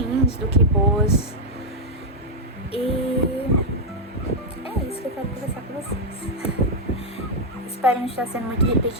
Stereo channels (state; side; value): normal; both; correlation -0.01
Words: do que boas. E é isso que eu quero conversar com vocês. Espero não estar sendo muito